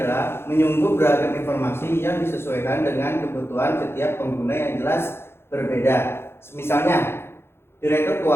menyungguh beragam informasi yang disesuaikan dengan kebutuhan setiap pengguna yang jelas berbeda. Misalnya, direktur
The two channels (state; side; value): late; right; 0.12 ms